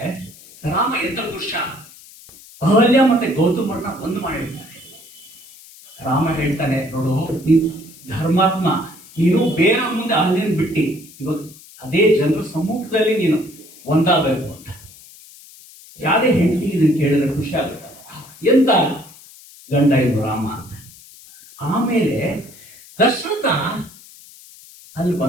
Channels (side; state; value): left; noise; hiss, 21 dB below the sound